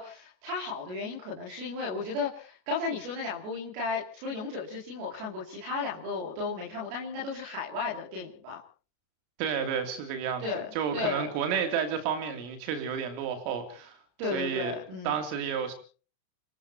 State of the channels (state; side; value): late; left; 33 ms